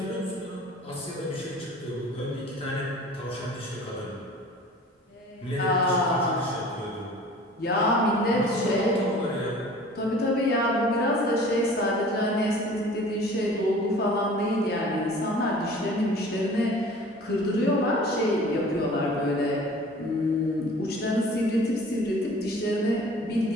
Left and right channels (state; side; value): normal; both; correlation 0.45